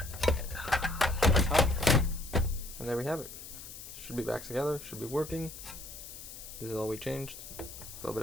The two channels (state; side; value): noise; left; hiss, 13 dB below the sound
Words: and there we have it. Should be back together. Should be working. This is all we changed. A little bit